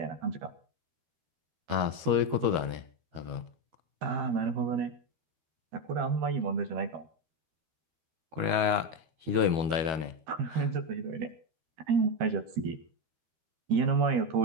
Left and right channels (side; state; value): left; late; 13 ms